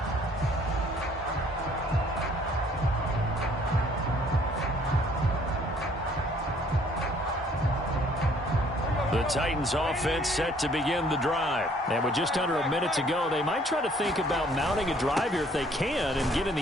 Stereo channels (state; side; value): normal; both; correlation 0.60